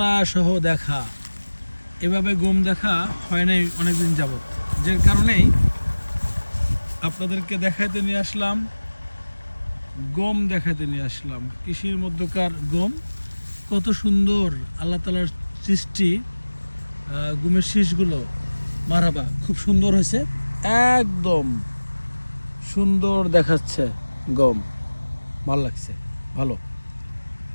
সহ দেখা, এভাবে গম দেখা হয় নাই অনেকদিন যাবত, যে কারণেই আপনাদেরকে দেখাইতে নিয়ে আসলাম, গম দেখাইতে নিয়ে আসলাম। কৃষির মধ্যকার গম কত সুন্দর, আল্লাহ তালার সৃষ্টি। গমের শীষগুলো মারাবা খুব সুন্দর হয়েছে, একদম সুন্দর দেখাচ্ছে গম। ভালো লাগছে, ভালো,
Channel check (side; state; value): both; inverted; correlation -1.00